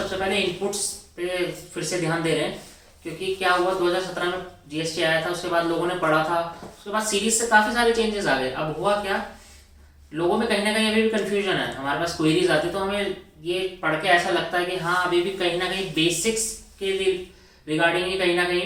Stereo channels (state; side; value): identical; both; correlation 1.00